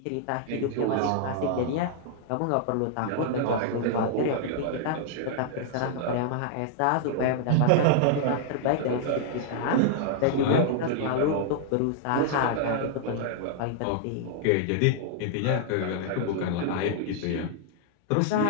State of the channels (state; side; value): different; both; correlation -0.01